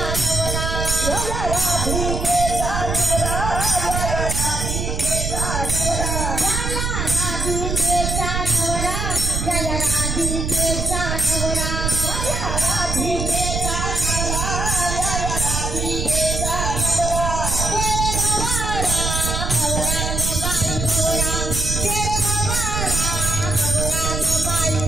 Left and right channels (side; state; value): right; noise; rumble, 2 dB below the sound